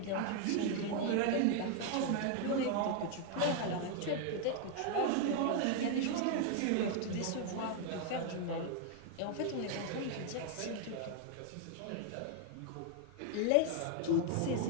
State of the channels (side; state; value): both; different; correlation 0.00